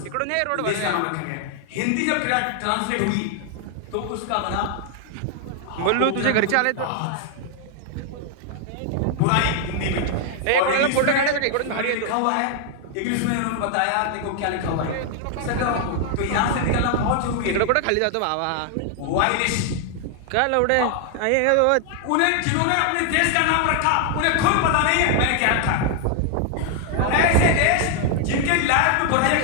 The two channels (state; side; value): different; both; correlation 0.00